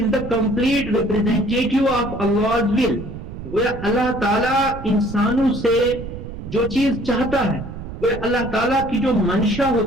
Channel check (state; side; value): noise; right; rumble, 10 dB below the sound